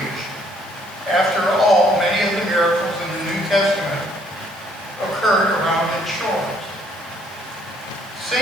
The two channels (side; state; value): both; normal; correlation 0.65